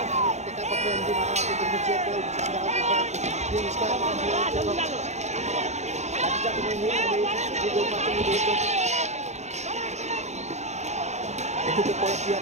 ଟେକାପତ୍ର ଏମିତି ମାଡ଼ ମାରୁଛନ୍ତି। ଚିଆର ପିଏମ୍ ସ୍କୋୟାର ଲାଠିଚାର୍ଜ ଦେଖିତେ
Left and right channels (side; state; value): left; late; 0.33 ms